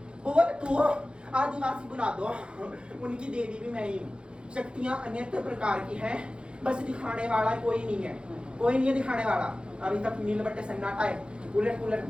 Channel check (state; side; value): late; left; 0.054 ms